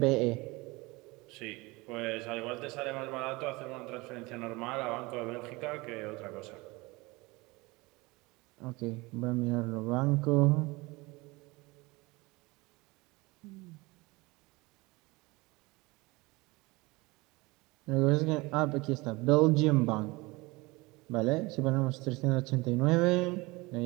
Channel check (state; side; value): quieter; left; 23.4 dB